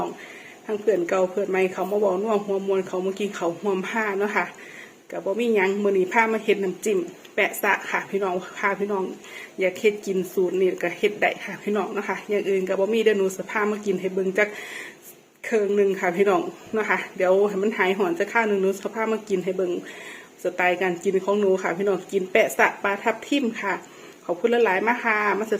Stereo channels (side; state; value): both; identical; correlation 1.00